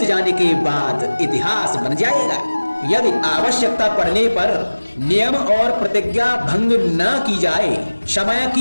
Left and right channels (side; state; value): both; inverted; correlation -1.00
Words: जाने के बाद इतिहास बन जाएगा। यदि आवश्यकता पड़ने पर नियम और प्रतिज्ञा भंग न की जाए, समय